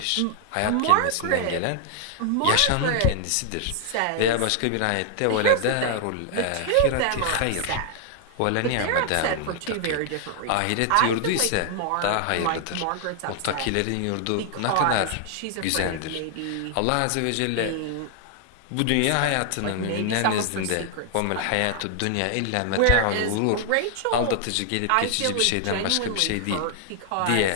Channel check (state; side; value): different; both; correlation 0.00